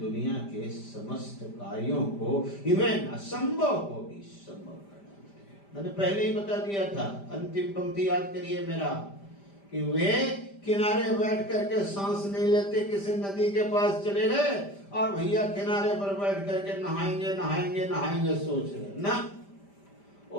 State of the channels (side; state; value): right; late; 5.1 ms